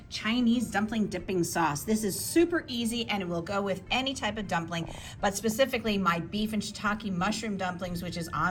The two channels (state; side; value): identical; both; correlation 1.00